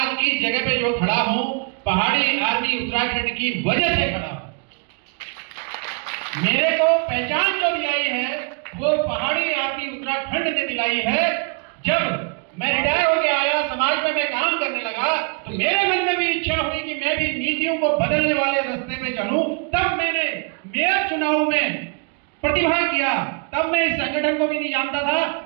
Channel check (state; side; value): quieter; left; 36.8 dB